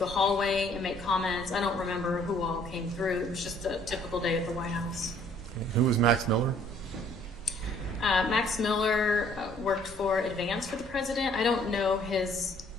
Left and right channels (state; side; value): normal; both; correlation 0.60